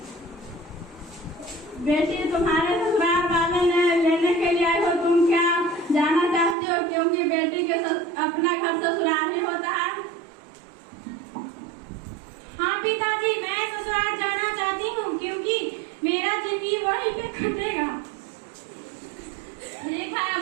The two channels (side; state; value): left; drops out; at 6.6 s